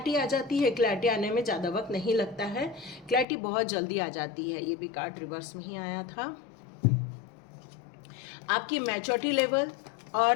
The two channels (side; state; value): right; drops out; at 3.2 s